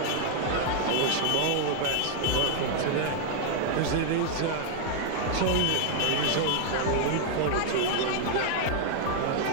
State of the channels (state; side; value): different; both; correlation 0.00